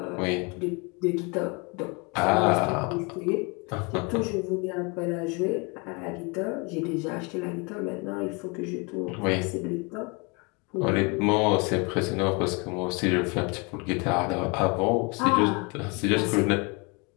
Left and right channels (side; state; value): right; quieter; 30.4 dB